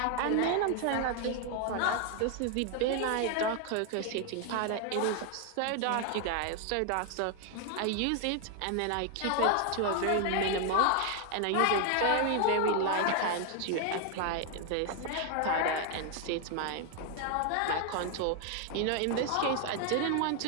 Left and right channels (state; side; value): different; both; correlation 0.00